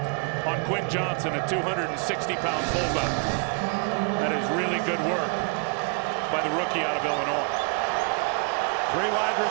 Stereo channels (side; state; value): left; quieter; 36.3 dB